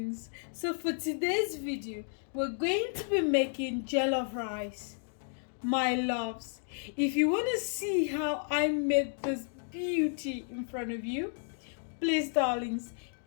So for today's video, we're going to be making jollof rice, my loves. If you want to see how I made this beauty in front of you, please darlings,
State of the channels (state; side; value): silent; right; 56 dB below the other